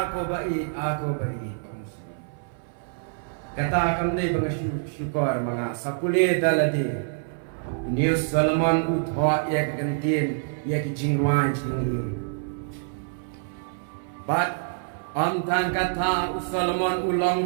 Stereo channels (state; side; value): silent; left; 58 dB below the other